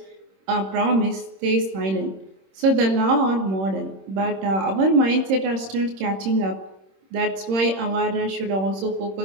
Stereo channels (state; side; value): late; left; 26 ms